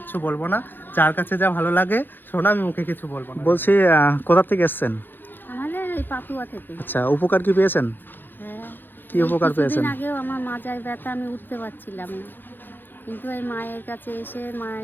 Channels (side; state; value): right; late; 0.095 ms